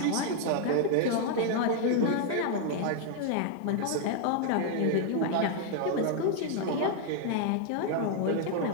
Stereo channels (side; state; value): both; different; correlation 0.00